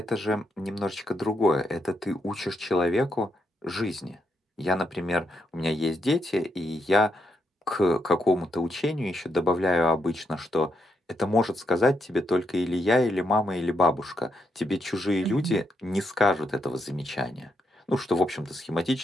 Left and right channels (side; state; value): both; normal; correlation 0.80